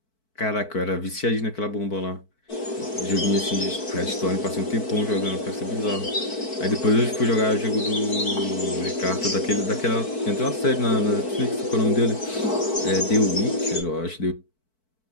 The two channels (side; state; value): right; late; 4.5 ms